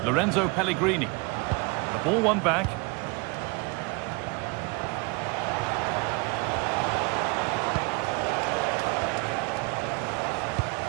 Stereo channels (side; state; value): left; quieter; 28.2 dB